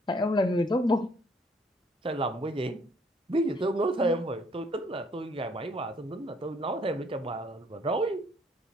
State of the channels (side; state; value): both; normal; correlation 0.64